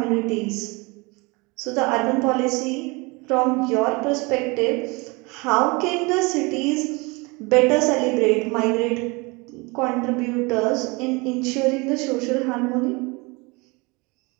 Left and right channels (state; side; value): quieter; left; 26.7 dB